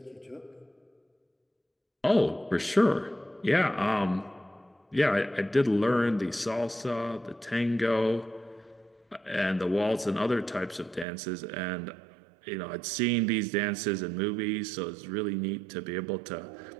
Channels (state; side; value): drops out; left; at 11.1 s